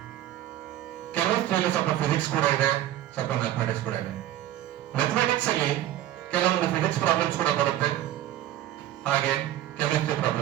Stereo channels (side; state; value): left; quieter; 13.2 dB